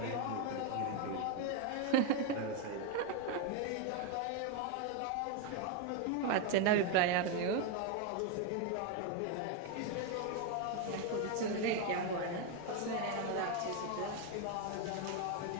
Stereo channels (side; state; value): both; different; correlation 0.01